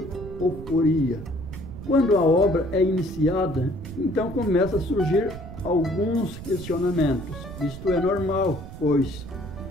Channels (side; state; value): right; noise; rumble, 12 dB below the sound